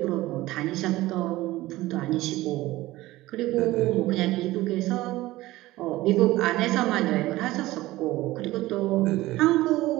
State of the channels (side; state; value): left; quieter; 17.7 dB